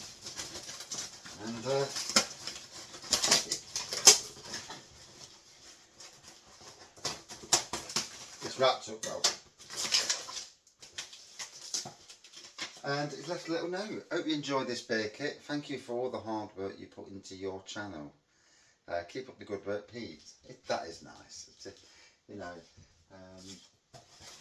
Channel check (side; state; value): both; identical; correlation 1.00